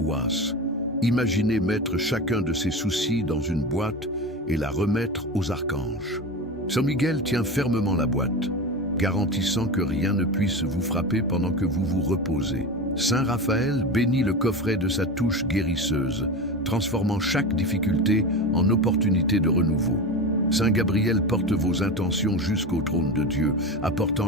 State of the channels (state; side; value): normal; both; correlation 0.25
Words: Imaginez mettre chacun de ces soucis dans une boîte et la remettre aux archanges. Saint Miguel tient fermement la boîte, garantissant que rien ne puisse vous frapper pendant que vous vous reposez. Saint Raphaël bénit le coffret de sa touche guérisseuse, transformant chaque difficulté en opportunité de renouveau. Saint Gabriel porte vos intentions jusqu'au trône de Dieu,